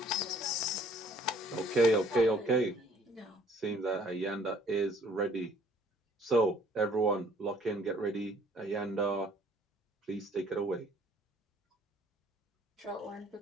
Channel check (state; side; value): normal; both; correlation 0.58